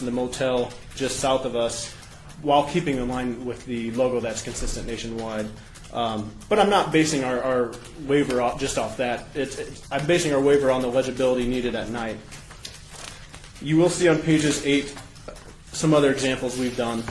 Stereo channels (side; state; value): both; identical; correlation 1.00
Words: and the motel just south of us, while keeping in line with the logo that's consistent nationwide. But I'm not basing our waiver just off that. I'm basing our waiver on the legibility needed at night. You will see on pages 8 some other examples we've done.